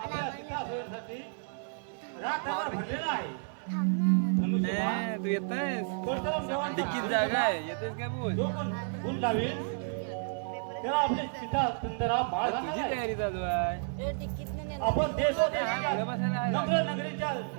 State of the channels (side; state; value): left; silent; digital silence